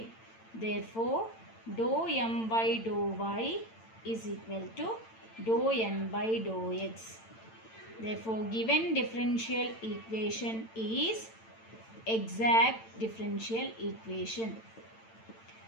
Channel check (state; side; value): late; right; 8.9 ms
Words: Therefore, dou m by dou y is equal to dou n by dou x. Therefore, given differential equation is exact differential equation.